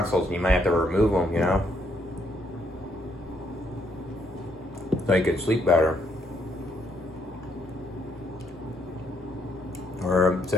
and you might have to remove them, you know, so you could sleep better. Or it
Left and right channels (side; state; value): both; normal; correlation 0.72